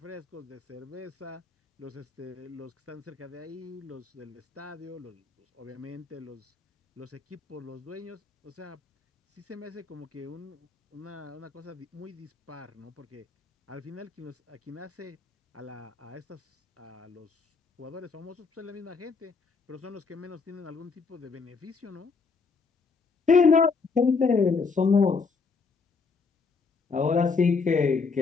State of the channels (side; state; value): right; quieter; 4.8 dB